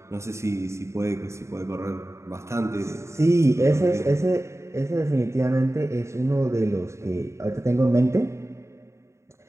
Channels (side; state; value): left; late; 0.14 ms